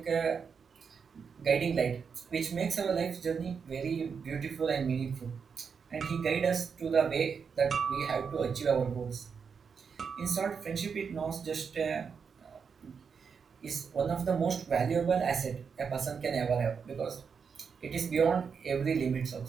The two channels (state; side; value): quieter; left; 6.1 dB